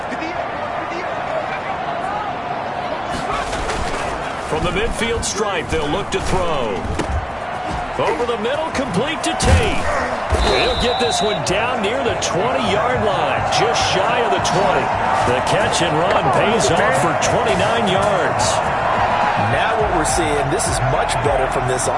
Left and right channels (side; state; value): both; identical; correlation 1.00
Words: From the midfield stripe, they'll look to throw. Over the middle, complete to Tate. He'll get this one down near the 20-yard line, just shy of the 20. The catch and run pays off for 29 yards. Now what we're seeing, this is much better from this